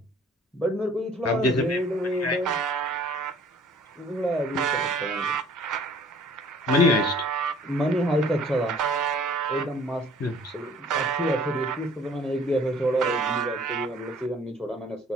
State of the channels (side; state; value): both; normal; correlation 0.53